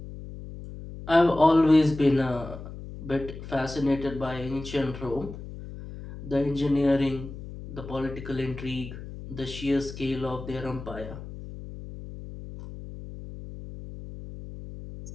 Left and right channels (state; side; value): noise; left; hum, 12 dB below the sound